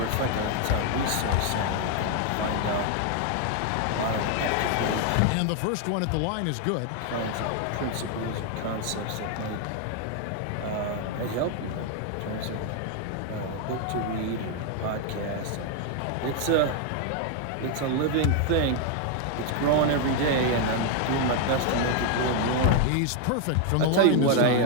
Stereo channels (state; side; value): different; both; correlation 0.01